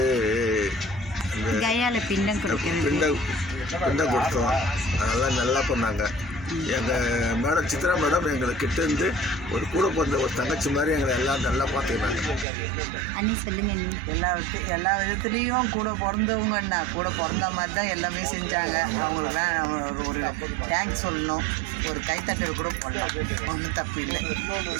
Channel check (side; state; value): left; drops out; at 12.5 s